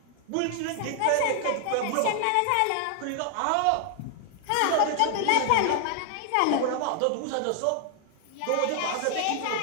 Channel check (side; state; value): both; different; correlation 0.00